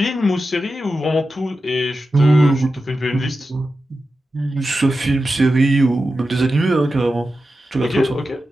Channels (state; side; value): normal; both; correlation 0.92